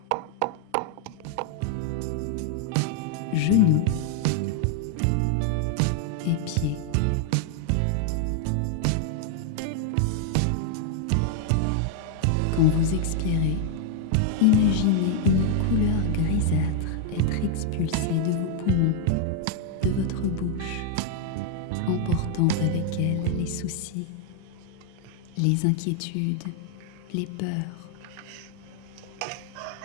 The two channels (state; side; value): different; both; correlation 0.00